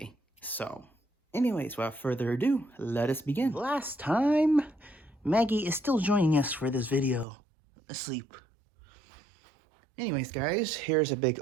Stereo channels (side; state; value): left; drops out; at 7.2 s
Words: So anyways, without further ado, let us begin. Last time, Maggie is still joining us for this video, asleep. Anyways, guys, here's a big